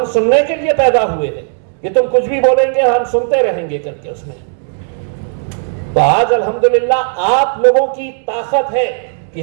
सुनने के लिए पैदा हुए हैं कि तुम कुछ भी बोलेंगे हम सुनते रहेंगे करके उसमें। तो आज अल्हम्दुलिल्लाह आप लोगों की ताकत है कि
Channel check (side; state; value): left; silent; digital silence